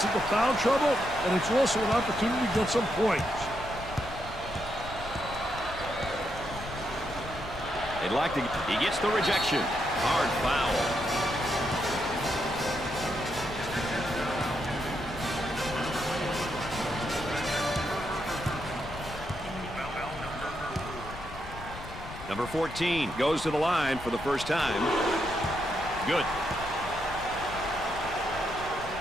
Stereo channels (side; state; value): left; noise; rumble, 12 dB below the sound